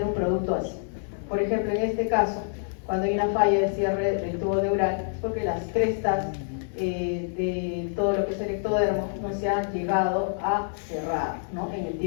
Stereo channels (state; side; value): silent; right; digital silence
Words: un producto así. Por ejemplo, en este caso, cuando hay una falla de cierre del tubo neural, es porque las crestas de todo lo que es el ectodermo no se han llegado a cerrar, ¿no? En el